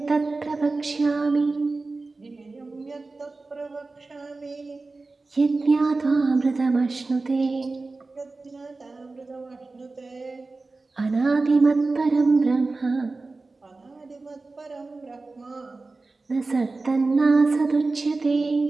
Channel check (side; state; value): left; quieter; 3.6 dB